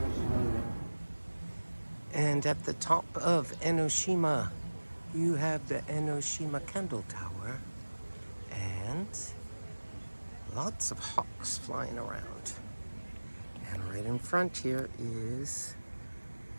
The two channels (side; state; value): both; inverted; correlation -1.00